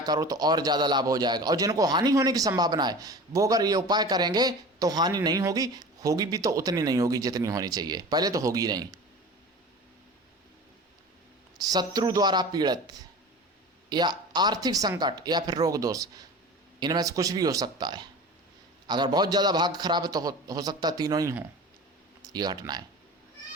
करो तो और ज़्यादा लाभ हो जाएगा। और जिनको हानि होने की संभावना है वो अगर ये उपाय करेंगे तो हानि नहीं होगी, होगी भी तो उतनी नहीं होगी जितनी होनी चाहिए, पहले तो होगी नहीं। शत्रु द्वारा पीड़ित या आर्थिक संकट या फिर रोग दोष, इनमें से कुछ भी हो सकता है। अगर बहुत ज़्यादा भाग्य खराब है तो हो सकता है तीनों ही हों ये घटनाएं।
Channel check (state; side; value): normal; both; correlation 0.36